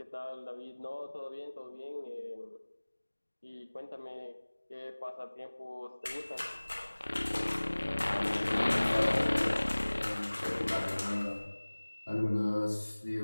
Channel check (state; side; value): inverted; both; correlation -1.00